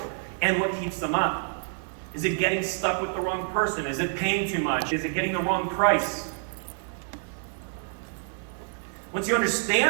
And what keeps them up? Is it getting stuck with the wrong person? Is it paying too much? Is it getting the wrong price? Once you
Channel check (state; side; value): silent; left; 60 dB below the other